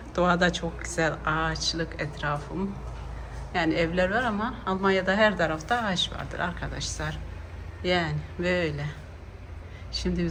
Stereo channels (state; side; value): identical; both; correlation 1.00